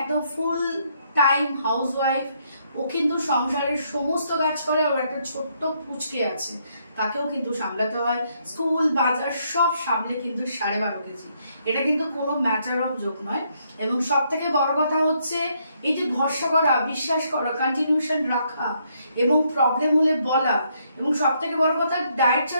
ফুল টাইম হাউসওয়াইফ। ও কিন্তু সংসারের সমস্ত কাজ করে। ওর একটা ছোট্ট পুচকে আছে, তাকেও কিন্তু সামলাতে হয়, স্কুল বাজার সব সামলে কিন্তু 12.5 কেজি। এটা কিন্তু কোনো ম্যাটার অফ জোক নয়। এবং সব থেকে বড় কথা হচ্ছে এই যে ভরসা করা, বিশ্বাস করা, কন্টিনিউশন রাখা এবং প্রবলেম হলে বলা, এবং সব থেকে বড় কথা ডায়েট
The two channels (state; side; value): inverted; both; correlation -0.73